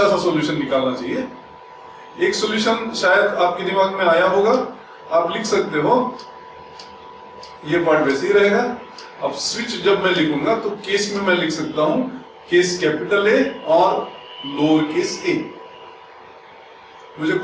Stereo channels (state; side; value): identical; both; correlation 1.00